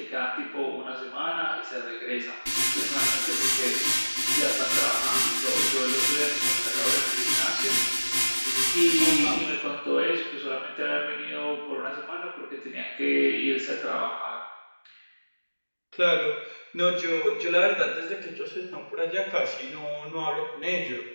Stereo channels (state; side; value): inverted; both; correlation -1.00